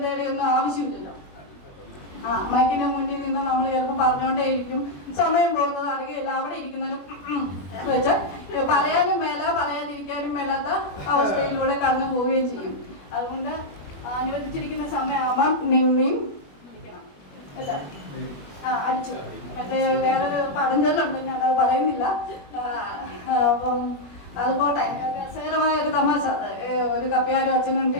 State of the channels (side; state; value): right; late; 21 ms